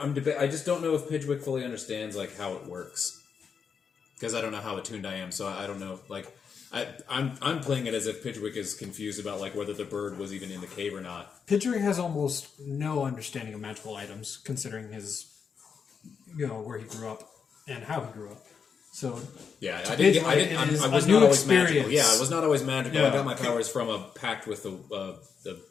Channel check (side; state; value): right; quieter; 6.3 dB